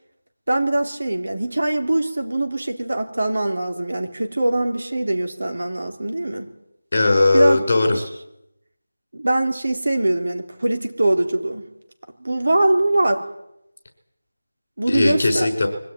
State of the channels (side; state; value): both; inverted; correlation -0.96